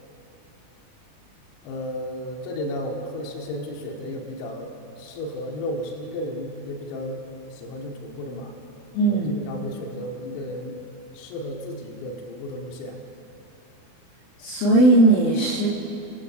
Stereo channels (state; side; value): late; right; 40 ms